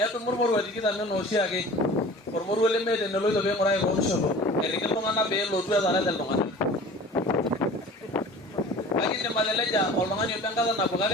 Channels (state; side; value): normal; both; correlation 0.42